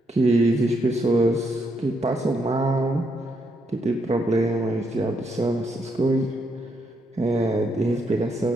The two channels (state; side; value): normal; both; correlation 0.77